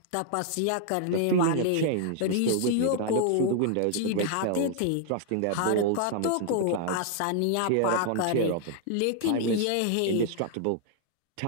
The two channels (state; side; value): different; both; correlation 0.00